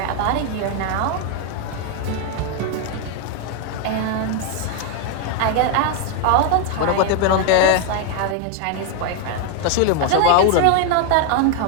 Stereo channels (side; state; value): both; different; correlation 0.01